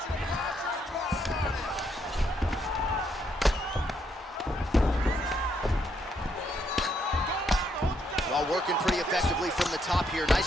Well, working pretty effectively from the top here.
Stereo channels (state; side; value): normal; both; correlation 0.75